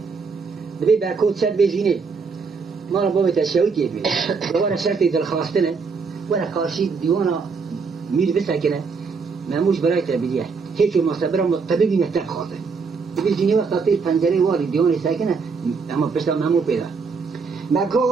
دبی برکوت شد بزینه ما را بابت شوکی بی دوباره شرطی دلخواستنه ولی کارشی دیوانا میر بسکنه ماموش برای تبدیه هیچ مصبر طبیبی نهتر خواهده دبی زینی وقت تیر پنجره واری دیوانی سکنه اما پشتا مامو پیدا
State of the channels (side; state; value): left; quieter; 5.0 dB